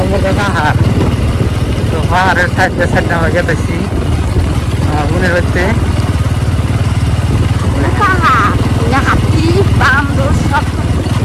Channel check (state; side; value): identical; both; correlation 1.00